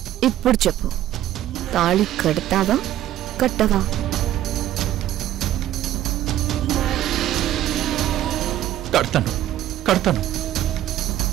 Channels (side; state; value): left; quieter; 12.9 dB